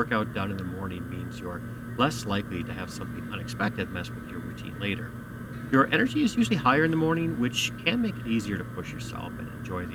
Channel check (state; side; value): identical; both; correlation 1.00